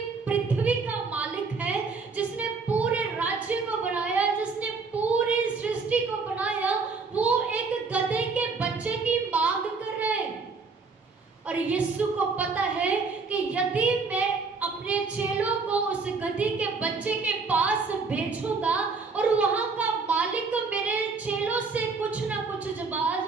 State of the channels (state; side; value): quieter; left; 4.5 dB